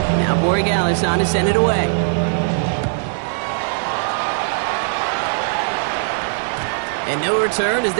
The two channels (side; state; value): left; silent; digital silence